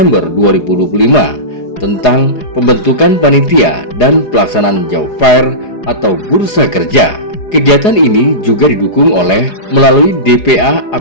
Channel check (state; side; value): late; right; 4.8 ms